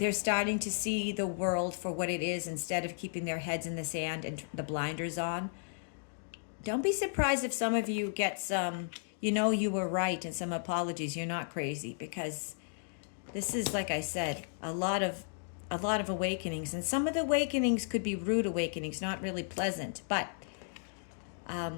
starting to see the world for what it is instead of keeping their heads in the sand and the blinders on. Don't be surprised if some of you get some, you were right and some apologies. You're not crazy, because this is, like I said, a lot of awakenings. And some of the awakenings could be rude awakenings, not really pleasant. But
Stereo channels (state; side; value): silent; right; digital silence